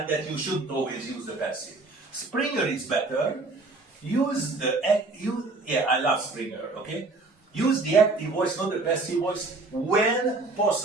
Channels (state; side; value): quieter; left; 3.4 dB